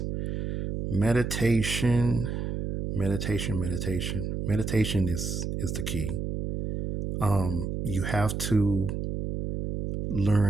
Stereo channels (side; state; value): right; noise; hum, 3 dB below the sound